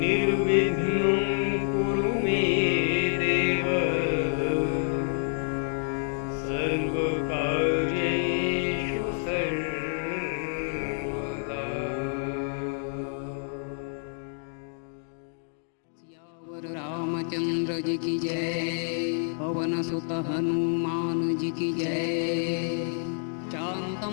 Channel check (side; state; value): right; silent; digital silence